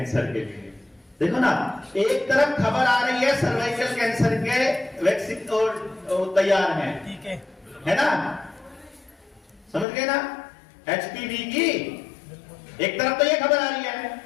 के लिए। देखो ना, एक तरफ खबर आ रही है सर्वाइकल कैंसर के वैक्सीन और तैयार है ना? समझ गए ना? HPV की एक तरफ तो ये खबर आ रही है,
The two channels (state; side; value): drops out; right; at 9.9 s